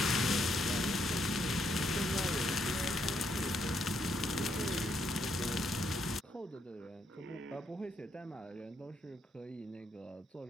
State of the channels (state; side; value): normal; both; correlation 0.75